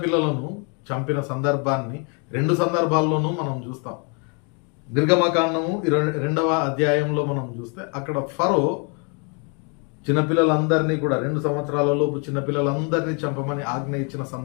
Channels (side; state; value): right; quieter; 36.1 dB